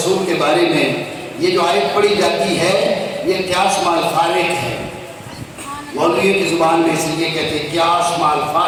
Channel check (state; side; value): identical; both; correlation 1.00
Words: کے بارے میں یہ جو آیت پڑھی جاتی ہے یہ قیاس مع الفارق ہے. مولویوں کی زبان میں اس لیے کہتے ہیں قیاس مع